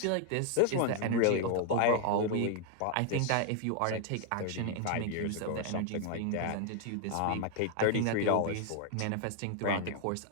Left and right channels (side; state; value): both; different; correlation 0.00